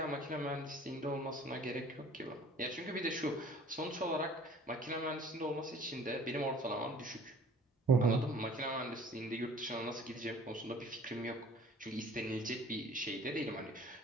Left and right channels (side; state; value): both; normal; correlation 0.50